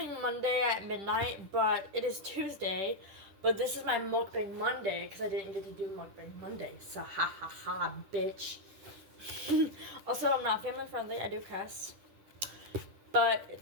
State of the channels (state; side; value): late; left; 10 ms